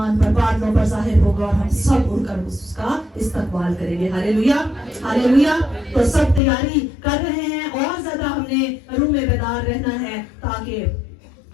پر بادلوں پر ظاہر ہوگا اور ہم سب اڑ کر اس کا استقبال کریں گے۔ ہاللیلویا، ہاللیلویا۔ تو سب تیاری کر رہے ہیں، اور زیادہ ہم نے روح میں بیدار رہنا ہے تاکہ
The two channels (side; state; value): right; drops out; at 6.4 s